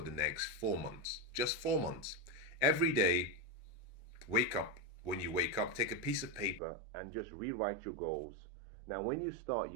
the next 4 months. Just 4 months. Every day, wake up. When you wake up, take a piece of paper and just rewrite your goals. Now, when you start,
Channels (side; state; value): left; drops out; at 6.6 s